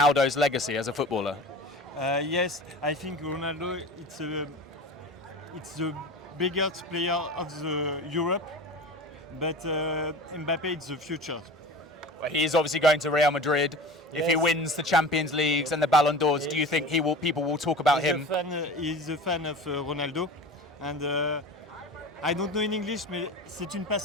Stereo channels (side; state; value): both; normal; correlation 0.34